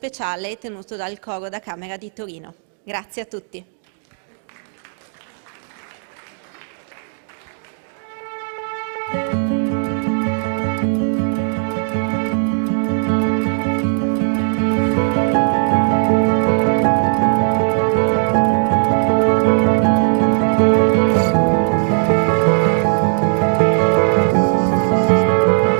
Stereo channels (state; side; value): silent; left; digital silence